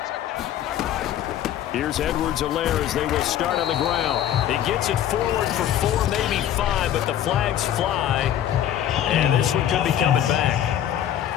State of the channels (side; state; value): right; quieter; 11.0 dB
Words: Here's Edwards-Helaire as they will start on the ground. He gets it forward for 4, maybe 5, but the flags fly. And this one could be coming back.